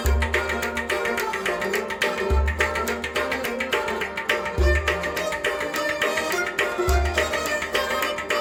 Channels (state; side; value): identical; both; correlation 1.00